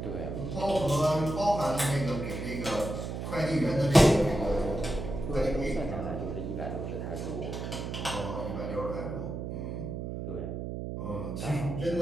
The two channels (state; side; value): noise; right; hum, 5 dB below the sound